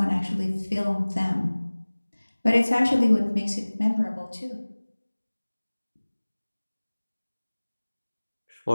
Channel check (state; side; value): inverted; both; correlation -1.00